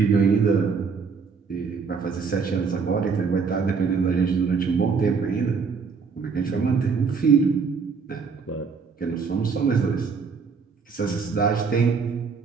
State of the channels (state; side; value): quieter; left; 5.4 dB